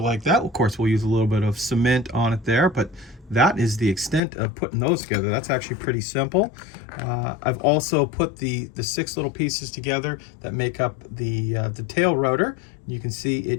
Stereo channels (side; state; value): right; drops out; at 4.2 s